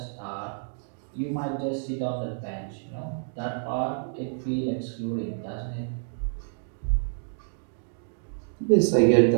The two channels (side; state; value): left; silent; digital silence